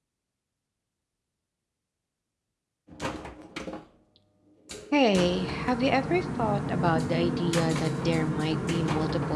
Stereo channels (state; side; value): identical; both; correlation 1.00